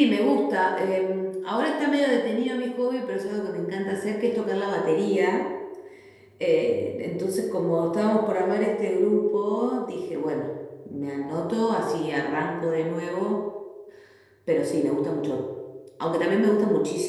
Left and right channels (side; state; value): both; identical; correlation 1.00